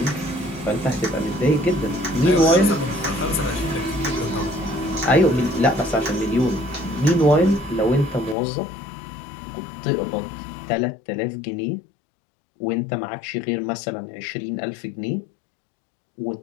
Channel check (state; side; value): drops out; right; at 8.3 s